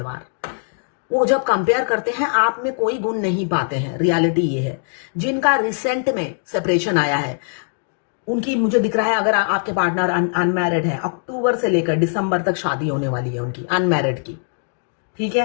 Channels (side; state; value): right; silent; digital silence